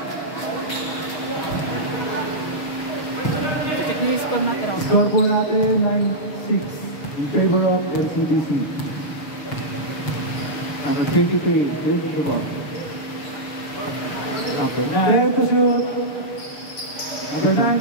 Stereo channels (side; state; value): right; late; 6.5 ms